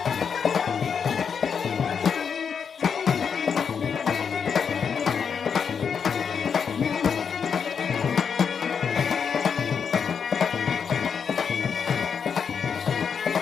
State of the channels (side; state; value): right; quieter; 6.7 dB